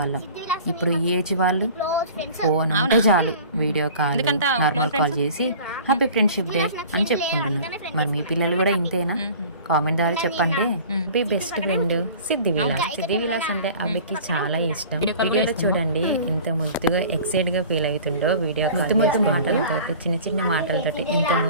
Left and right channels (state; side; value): inverted; both; correlation -0.44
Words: ఇప్పుడు ఈ ఏజ్ వాళ్ళు ఫోన్ ఉంటే చాలు వీడియో కాల్ నార్మల్ కాల్ చేసి హ్యాపీ ఫ్రెండ్షిప్ డే అని చెప్పుకుంటున్నారు. మరి మీ పిల్లలు కూడా ఇంతేనా? కామెంట్ ద్వారా చెప్పండి. మీ బెస్ట్ ఫ్రెండ్ సిద్ధి విలాస్ అంటే అభికి చాలా ఇష్టం. వీడియోలో చూడండి ఎంత ముద్దుగా ఎక్సైట్ గా ఫీల్ అవుతుండో. వీడియో ముద్దు మాటలతో చిన్న మాటలతో ఎంత